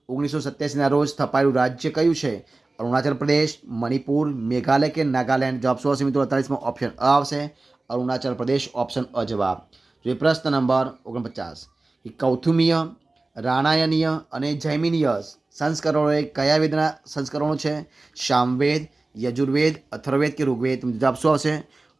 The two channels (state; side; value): quieter; left; 3.2 dB